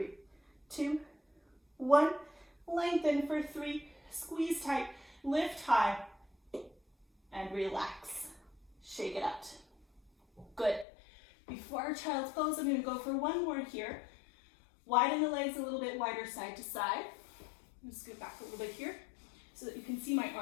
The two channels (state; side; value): drops out; right; at 10.9 s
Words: 2, 1. Lengthen for 3, squeeze tight, lift high, and relax. Shake it out. Good. Before our child's pose, I'm going to go for one more here. Widen the legs a little bit wider side to side. I'm going to scoot back a little bit here so that you can see my